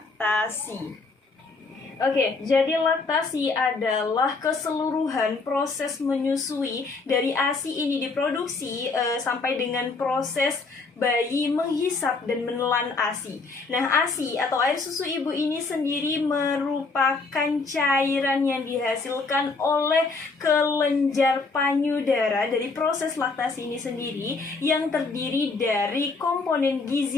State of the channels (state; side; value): quieter; right; 4.0 dB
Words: Oke, jadi laktasi adalah keseluruhan proses menyusui dari ASI ini diproduksi sampai dengan proses bayi menghisap dan menelan ASI. Nah, ASI atau air susu ibu ini sendiri merupakan cairan yang dihasilkan oleh kelenjar payudara dari proses laktasi ini sendiri yang terdiri dari komponen